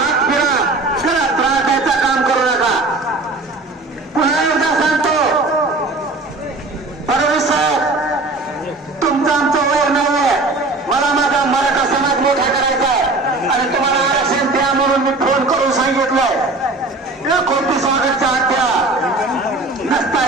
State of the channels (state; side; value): quieter; left; 3.2 dB